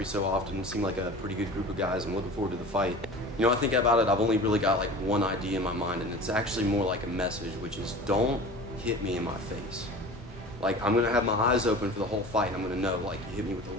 so often. Seem like a pretty good group of guys. I'm looking forward to the fight. You know, I think about it, I've only really got like one idea in my mind, and it's actually more like a message, which is don't hit me in my face. Like, I'm gonna have my eyes open for the whole fight, and I'm gonna know, like, you hit me with the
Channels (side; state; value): both; normal; correlation 0.38